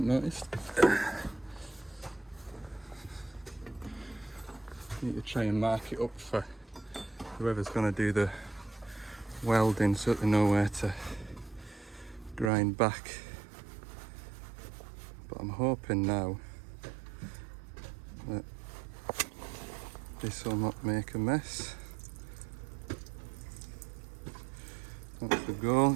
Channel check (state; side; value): drops out; left; at 12.5 s